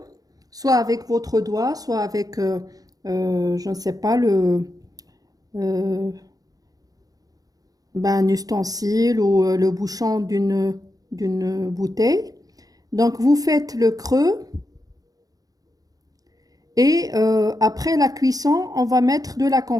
soit avec votre doigt, soit avec, je ne sais pas, euh, un ustensile ou le bouchon d'une bouteille. Donc, vous faites le creux et après la cuisson, on va mettre de la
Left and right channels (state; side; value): late; left; 0.18 ms